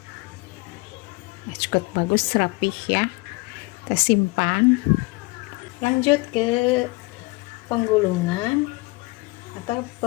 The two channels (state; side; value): quieter; right; 25.2 dB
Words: Nah, cukup bagus, rapih ya. Kita simpan. Lanjut ke penggulungan atau